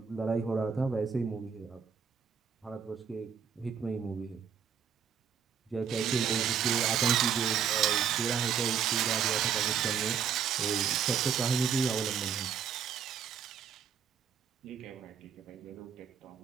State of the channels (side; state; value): left; quieter; 7.5 dB